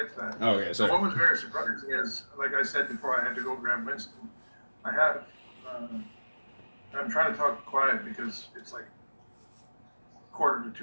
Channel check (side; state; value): both; inverted; correlation -1.00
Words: to that. Oh, okay, So sorry. what was very surprising is, like I said before, I had to go grab Winston. I have. I'm trying to talk quiet because it's like 1:45